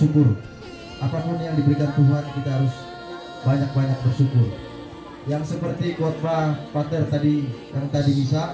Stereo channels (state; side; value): identical; both; correlation 1.00